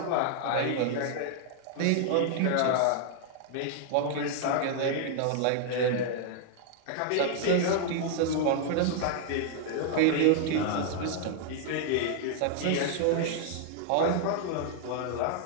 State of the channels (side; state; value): both; different; correlation 0.00